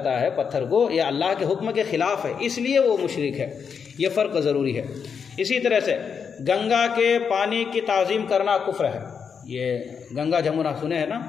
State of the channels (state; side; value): quieter; right; 6.5 dB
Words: ہے پتھر کو، یہ اللہ کے حکم کے خلاف ہے، اس لیے وہ مشرک ہے، یہ فرق ضروری ہے۔ اسی طرح سے گنگا کے پانی کی تعظیم کرنا کفر ہے، یہ گنگا جمنا سنے ہیں نا،